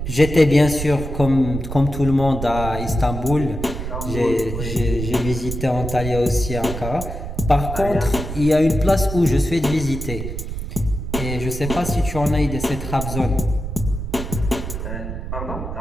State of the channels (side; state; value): right; noise; rumble, 6 dB below the sound